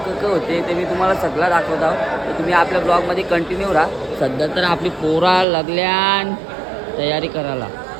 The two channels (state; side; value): drops out; left; at 5.5 s